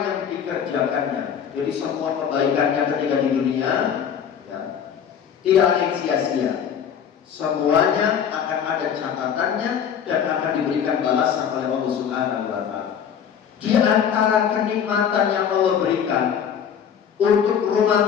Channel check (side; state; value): right; quieter; 8.1 dB